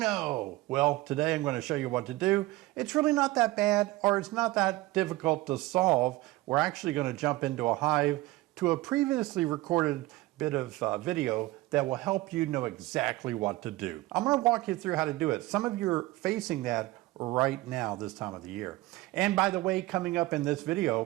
Well, today I'm going to show you what to do. It's really not that bad, or it's not that difficult to solve. We're actually going to jump into a hive to a previously recorded bit of video that will help you know exactly what to do. I'm going to walk you through how to do it. Some of you are facing that right now this time of the year. And by the way, coming up in this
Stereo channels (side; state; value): left; quieter; 19.1 dB